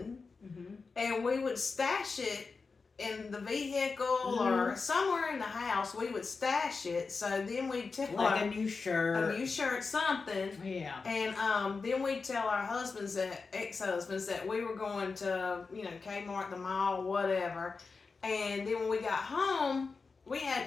and we would stash it in the vehicle or somewhere in the house. We would stash it, so then we'd tell Like a new shirt. something. Yeah. And then we'd tell our ex-husbands that we were going to, Kmart, the mall, whatever. And then when we got home, we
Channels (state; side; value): quieter; right; 4.5 dB